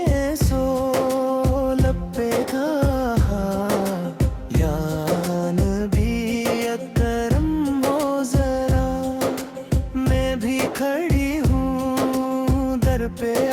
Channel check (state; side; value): identical; both; correlation 1.00